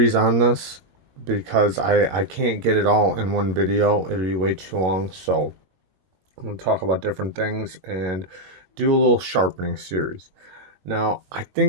on this because I can't get it all in one video. It'll be way too long. So I'm going to talk about different things and do a little sharpening series. Now, I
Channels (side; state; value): left; late; 22 ms